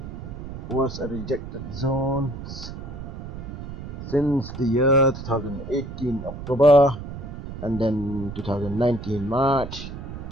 was a rejected zone since the year 2018 October, and then 2019 March,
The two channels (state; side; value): noise; right; rumble, 10 dB below the sound